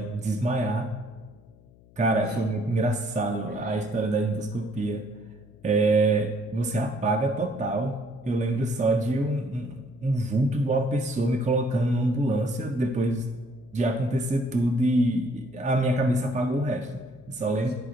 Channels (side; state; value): left; noise; hum, 26 dB below the sound